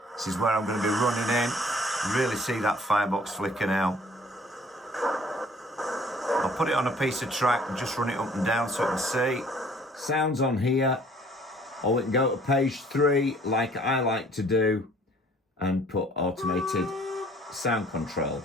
This is where I'm going to be running in. Really see that firebox flicker now. I'll put it on a piece of track and just run it up and down so you can see. Sounds on here. Or we can go to page 3 like I like to do and put automated sound control.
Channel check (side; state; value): both; normal; correlation 0.56